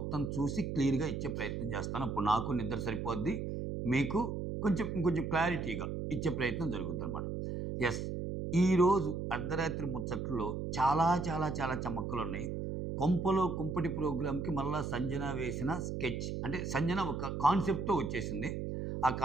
చూసి క్లియర్గా ఇచ్చే ప్రయత్నం చేస్తాను. అప్పుడు నాకు నిద్ర సరిపోద్ది, మీకు ఇంకొంచెం క్లారిటీగా ఇచ్చే ప్రయత్నం జరుగుద్ది అనమాట. ఎస్, ఈరోజు అర్ధరాత్రి ముచ్చట్లో చాలా చాలా చాలా చమక్కులు ఉన్నాయి. కొంపలో కుంపటి ప్రోగ్రామ్కి మళ్ళా సంజన వేసిన స్కెచ్, అంటే సంజన ఒక కాన్సెప్ట్తో వచ్చేసింది. ఆ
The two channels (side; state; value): right; noise; hum, 4 dB below the sound